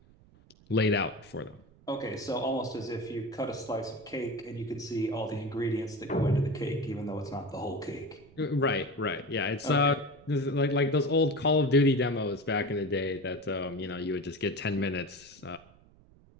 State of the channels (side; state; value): right; noise; rumble, 26 dB below the sound